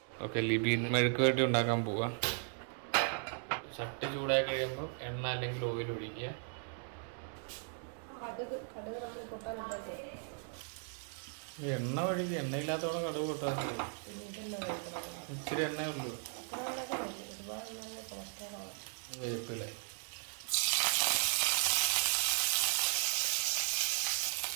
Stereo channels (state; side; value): silent; left; 53 dB below the other